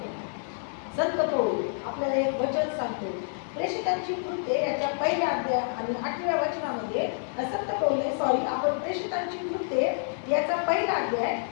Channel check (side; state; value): right; silent; 59 dB below the other